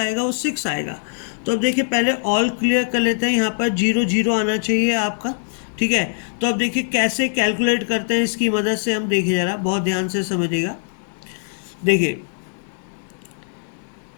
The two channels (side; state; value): right; silent; digital silence